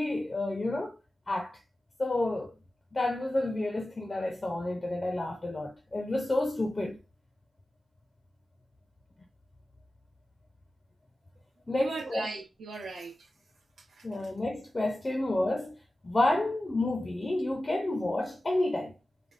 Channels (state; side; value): normal; both; correlation 0.95